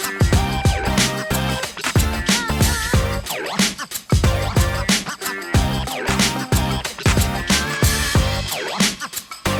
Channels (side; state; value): both; identical; correlation 1.00